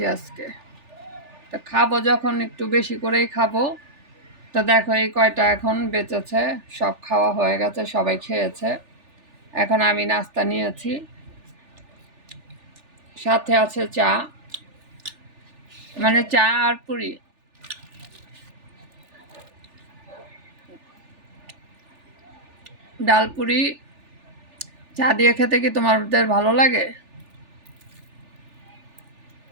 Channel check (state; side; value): late; left; 3.4 ms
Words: আজকে। তো খাবো যখন একটু বেশি করেই খাবো। তো দেখো এই কয়টা এখন বেঁচেছে, সব খাওয়া হয়ে গেছে, সবাই খেয়েছে। এখন আমি নাস্তা নিয়েছি, সাথে আছে চা, মানে চা আর পুরি। ডাল পুরি চা দিয়ে খেতে কি তোমাদের ভালো লাগে?